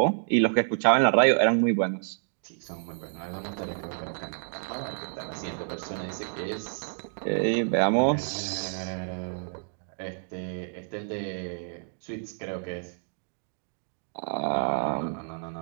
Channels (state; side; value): silent; left; digital silence